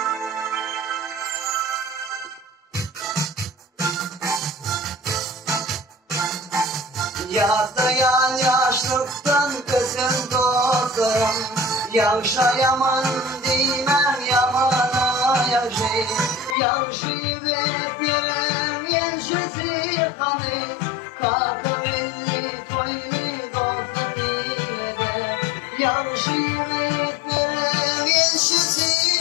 Yağlayan yaşlıktan kızın dostlarım, yavşayaman değmem yamana yavşayım. Yavşayı beklerim yensizi kanı, kakıvilli toylu dostum yine. Yavşayı beklerim yensizi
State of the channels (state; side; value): drops out; right; at 16.6 s